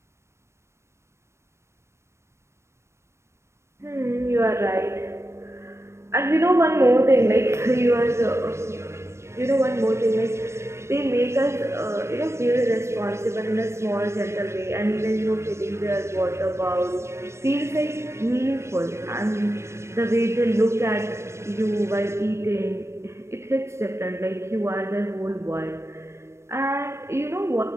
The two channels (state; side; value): late; left; 0.13 ms